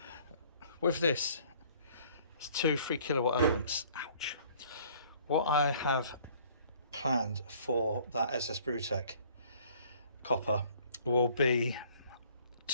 With this, it's 2 3 kilowatt elements. Ouch. What I have planned for that SS Brewtech copper will be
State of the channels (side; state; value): both; inverted; correlation -0.56